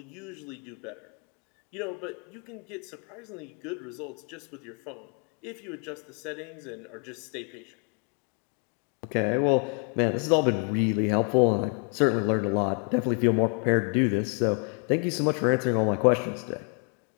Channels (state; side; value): quieter; right; 37.9 dB